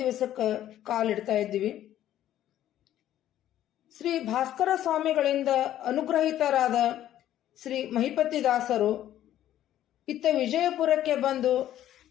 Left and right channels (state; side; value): quieter; right; 12.3 dB